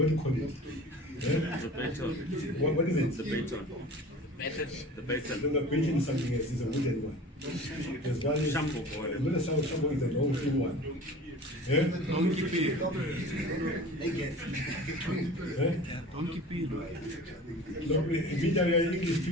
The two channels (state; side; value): normal; both; correlation 0.40